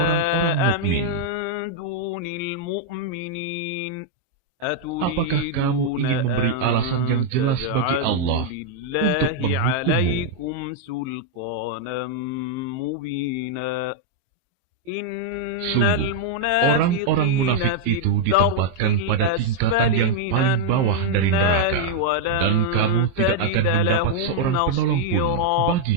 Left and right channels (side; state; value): left; late; 23 ms